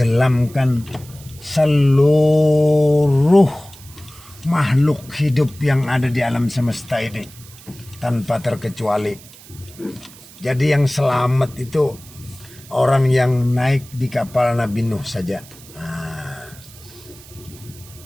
seluruh makhluk hidup yang ada di alam semesta ini tanpa terkecuali. Jadi yang selamat itu orang yang naik di kapal Nabi Nuh saja.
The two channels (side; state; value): right; noise; hiss, 21 dB below the sound